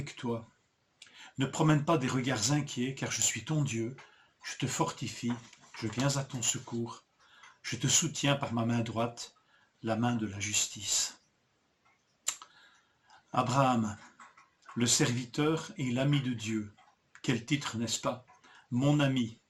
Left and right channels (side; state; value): both; identical; correlation 1.00